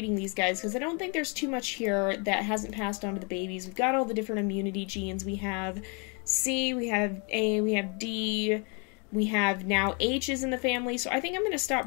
these guys because I don't think there's too much here that hasn't passed on to the babies. We've got all the different immunity genes. We have C, we have A, we have D, we have now H's in the family. So I think I'm going to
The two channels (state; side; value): quieter; right; 35.3 dB